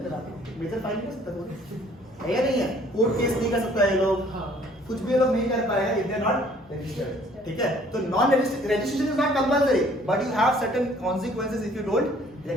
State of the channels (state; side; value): normal; both; correlation 0.58